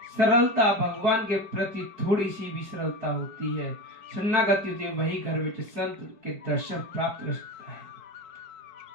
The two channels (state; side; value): late; left; 5.0 ms